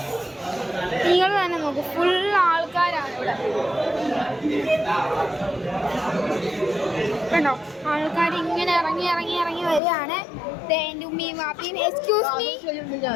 നിങ്ങൾ തന്നെ നോക്കൂ, ഫുൾ ആൾക്കാരാണ് ഇവിടെ. കണ്ടോ, ആൾക്കാർ ഇങ്ങനെ ഇറങ്ങി ഇറങ്ങി ഇറങ്ങി വരികയാണ്. എൻ്റെ ഉമ്മയും വാപ്പിയും. Excuse me.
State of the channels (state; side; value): drops out; right; at 9.8 s